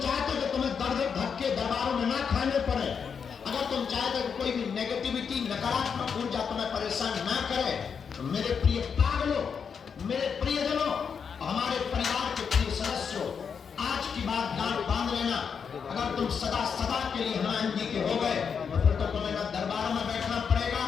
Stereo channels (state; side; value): quieter; right; 6.5 dB